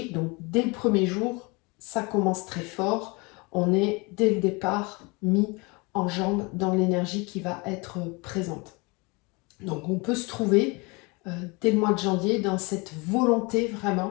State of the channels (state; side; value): quieter; right; 27.7 dB